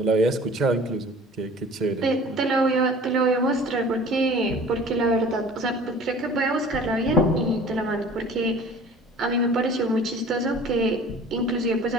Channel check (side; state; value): both; normal; correlation 0.46